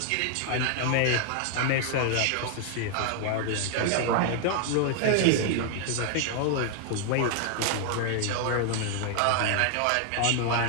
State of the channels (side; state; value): both; different; correlation 0.00